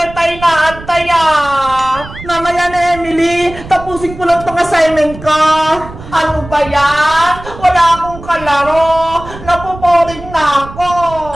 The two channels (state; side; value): noise; right; rumble, 15 dB below the sound